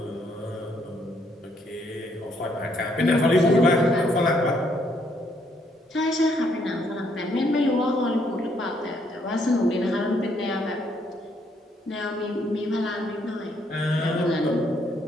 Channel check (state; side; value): normal; both; correlation 0.71